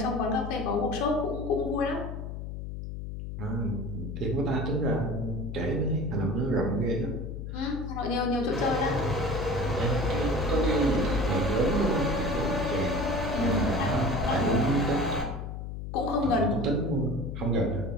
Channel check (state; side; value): noise; left; hum, 7 dB below the sound